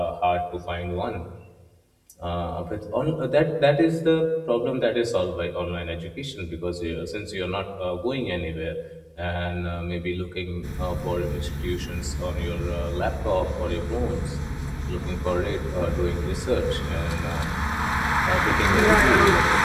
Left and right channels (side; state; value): both; identical; correlation 1.00